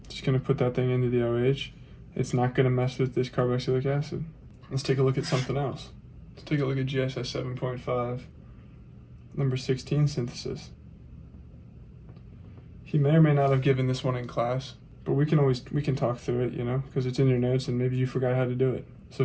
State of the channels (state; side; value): identical; both; correlation 1.00